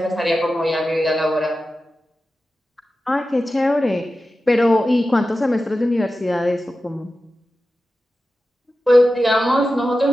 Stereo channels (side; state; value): both; normal; correlation 0.93